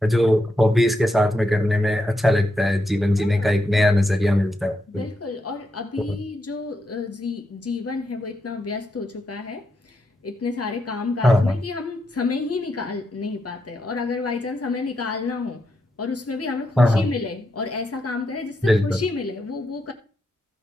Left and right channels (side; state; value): both; normal; correlation 0.83